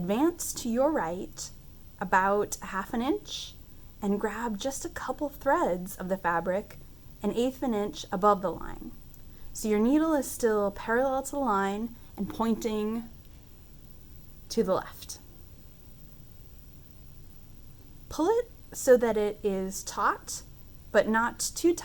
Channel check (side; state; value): left; noise; rumble, 22 dB below the sound